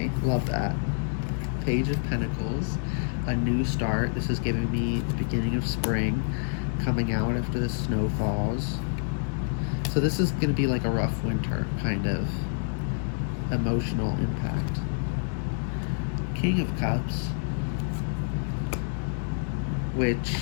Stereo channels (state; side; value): silent; right; digital silence